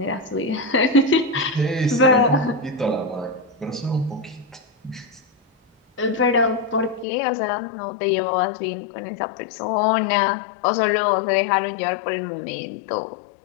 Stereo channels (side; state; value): right; drops out; at 7.1 s